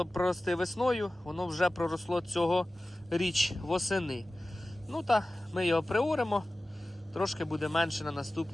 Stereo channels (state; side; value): normal; both; correlation 0.96